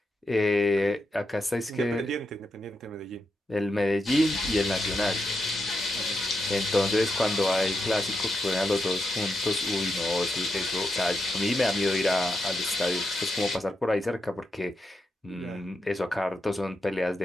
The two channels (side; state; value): both; normal; correlation 0.85